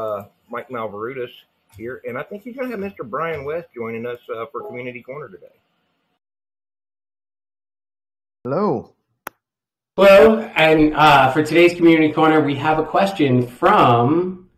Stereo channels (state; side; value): identical; both; correlation 1.00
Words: Mike Malverutis here, and I think he's going to have Mr. Brian West joining us for Community Corner today. Hello. Hello, and for today's Community Corner, we have a question from